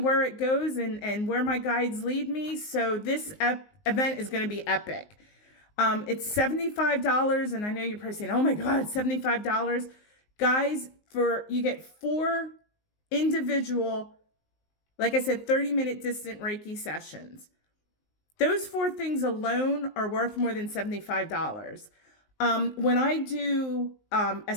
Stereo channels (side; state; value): right; late; 19 ms